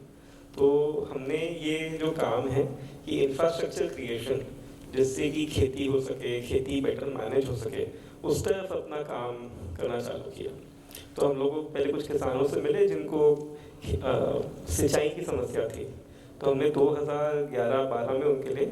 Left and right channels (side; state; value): both; identical; correlation 1.00